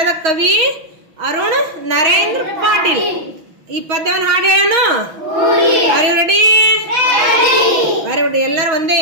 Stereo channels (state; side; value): late; left; 6.0 ms